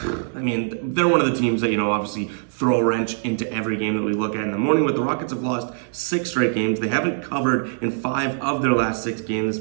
mean, they're one of the teams that, obviously throw a wrench into every game that we look at in the morning. But the Rockets have lost 6 straight games. They haven't covered in 5 of their last 6 games.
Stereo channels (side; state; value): left; silent; digital silence